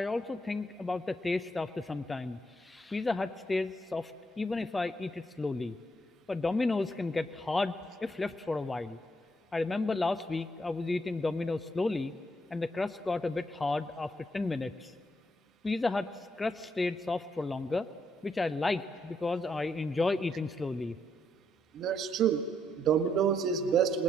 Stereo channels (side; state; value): both; normal; correlation 0.76